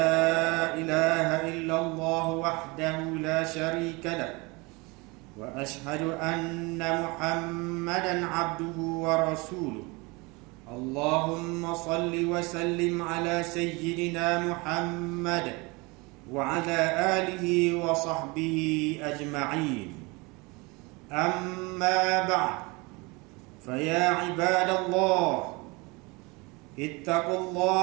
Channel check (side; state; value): left; quieter; 26.3 dB